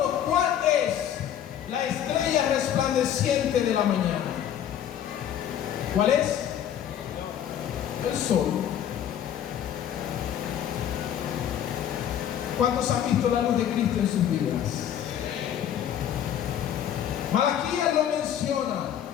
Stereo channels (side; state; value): right; quieter; 10.1 dB